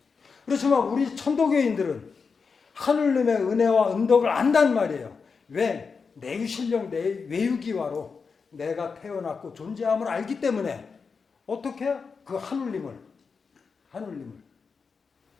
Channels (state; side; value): quieter; right; 5.2 dB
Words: 그렇지만 우리 천도교인들은 하느님의 은혜와 은덕을 안단 말이에요. 왜? 내유신령 내 외유기와로 내가 태어났고 존재함을 알기 때문에 어떻게? 그 하느님을